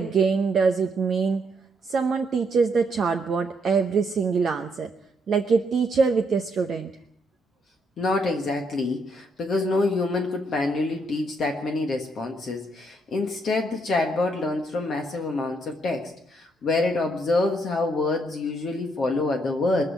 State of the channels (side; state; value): both; normal; correlation 0.74